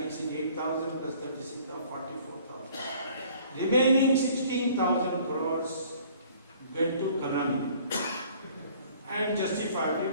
it 8,000 plus 36,000, 44,000. Remaining 16,000 crores went to Karnamini. And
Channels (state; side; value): inverted; both; correlation -0.54